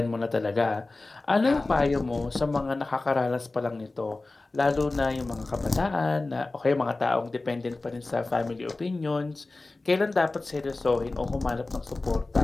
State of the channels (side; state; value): right; quieter; 3.2 dB